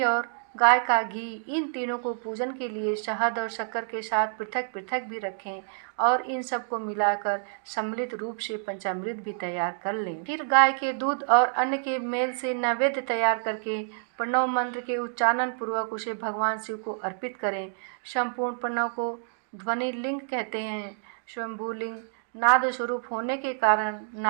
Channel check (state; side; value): silent; left; digital silence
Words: और गाय का घी, इन तीनों को पूजन के लिए शहद और शक्कर के साथ पृथक पृथक भी रखें और इन सब को मिलाकर सम्मिलित रूप से पंचामृत भी तैयार कर लें। फिर गाय के दूध और अन्न के मेल से नैवेद्य तैयार करके प्रणव मंत्र के उच्चारण पूर्वक उसे भगवान शिव को अर्पित करें। संपूर्ण प्रणव को ध्वनि लिंग कहते हैं। स्वयंभूलिंग नाद स्वरूप होने के कारण